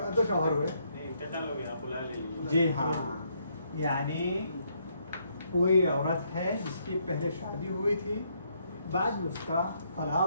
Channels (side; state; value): both; inverted; correlation -0.73